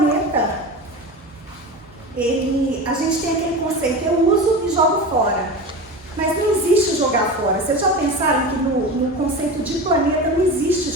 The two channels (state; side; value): normal; both; correlation 0.28